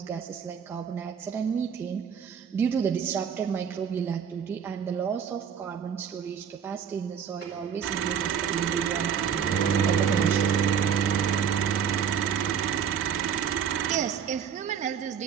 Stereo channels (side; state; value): left; quieter; 7.8 dB